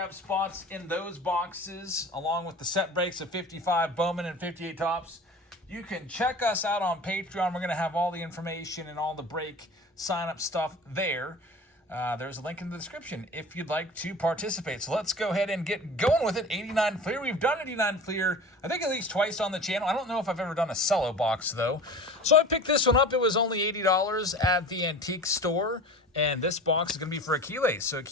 spots in those boxes, along with the set breaks of 55 Bowman and 58 tops, you can check us out on Patreon. We're going to have all the information and all the break sign-up stuff there. There's a link in the description if you'd like to participate. So let's go ahead and get going with it. 89 FLEER. We've done 89 FLEER, I think, at least twice on the channel. I don't know if I've ever done a CELLO box, though. So I picked this one up. It was only $80 at the antique store. And this box is going to be for Achilles. So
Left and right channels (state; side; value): normal; both; correlation 0.37